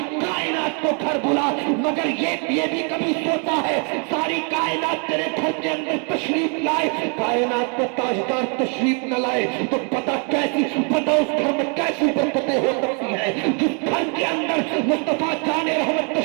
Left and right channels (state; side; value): quieter; left; 38.0 dB